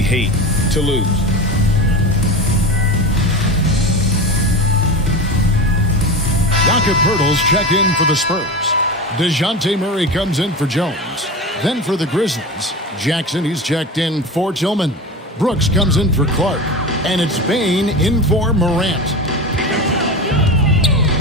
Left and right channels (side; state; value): both; normal; correlation 0.26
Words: hate to lose. Jakob Poeltl's checked in for the Spurs. DeJounte Murray comes in for Jones. Then for the Grizzlies, Jackson, he's checked in for Tillman. Brooks comes in for Clark. And it's Bane in for Morant.